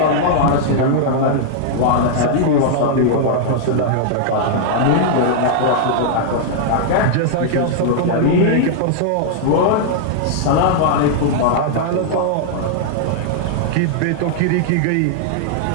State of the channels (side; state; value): both; different; correlation -0.01